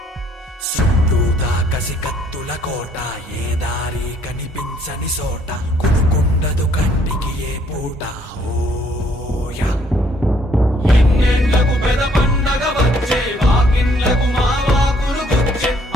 చుట్టూతా కసి కత్తుల కోట ఏ దారి కనిపించని సోట కునుకుండదు కంటికి ఏ పూట ఓయా ఎన్నెండ్లకు పెద పండగ వచ్చే వాకిండ్లకు మా వాకులు గుచ్చే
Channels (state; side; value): normal; both; correlation 0.64